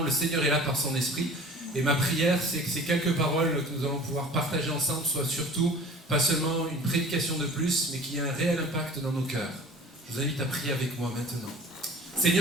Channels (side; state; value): both; normal; correlation 0.43